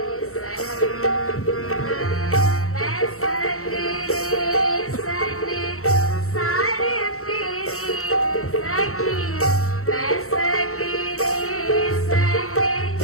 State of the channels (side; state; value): right; late; 0.64 ms